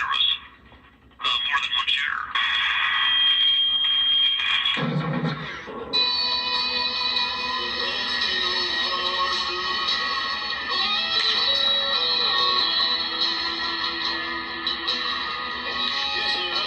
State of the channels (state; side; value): identical; both; correlation 1.00